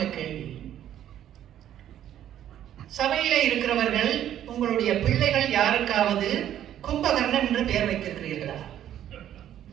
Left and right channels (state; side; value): quieter; left; 11.2 dB